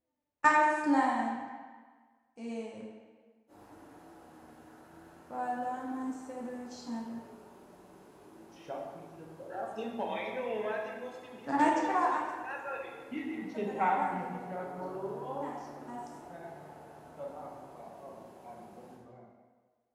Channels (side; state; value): both; identical; correlation 1.00